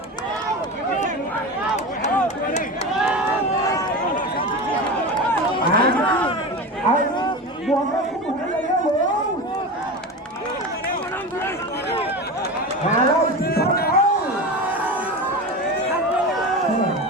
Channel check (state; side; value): normal; both; correlation 0.26